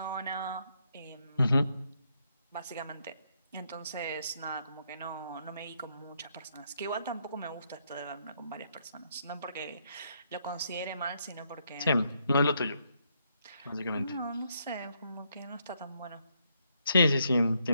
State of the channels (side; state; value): both; inverted; correlation -0.76